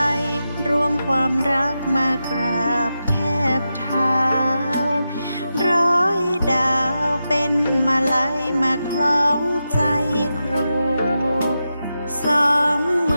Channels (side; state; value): both; inverted; correlation -0.89